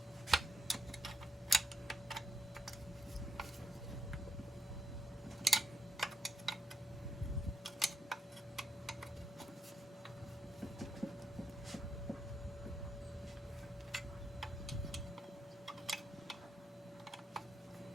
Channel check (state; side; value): normal; both; correlation 0.81